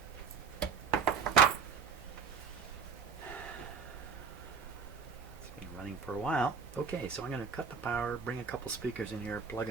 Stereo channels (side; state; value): left; quieter; 5.9 dB